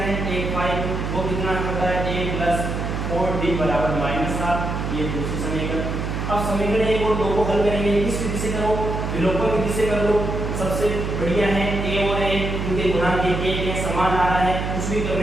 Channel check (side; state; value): right; noise; hum, 3 dB below the sound